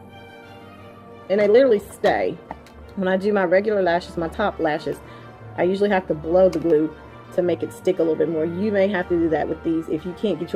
And they literally stay. When I do my regular lashes, my top lashes, I usually have to blow the glue to make it stick a little bit more. You may have to do that with these if you can't get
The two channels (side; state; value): both; identical; correlation 1.00